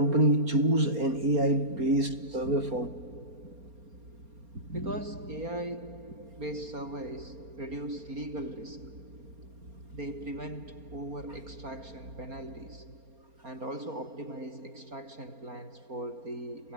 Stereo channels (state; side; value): late; left; 4.3 ms